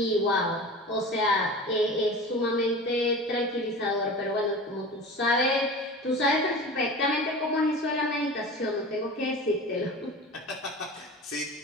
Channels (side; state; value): both; normal; correlation 0.35